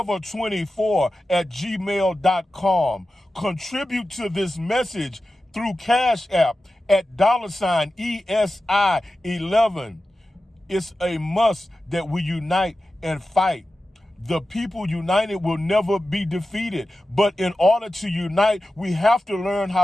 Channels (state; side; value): normal; both; correlation 0.93